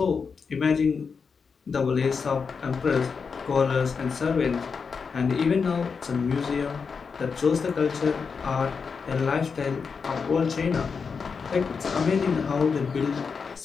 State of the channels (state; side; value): quieter; right; 5.5 dB